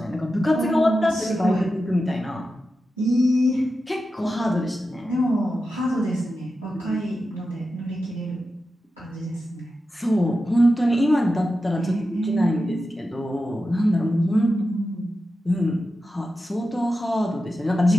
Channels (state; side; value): normal; both; correlation 0.91